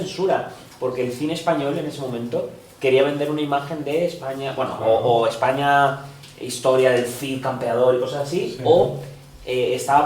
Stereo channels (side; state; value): both; identical; correlation 1.00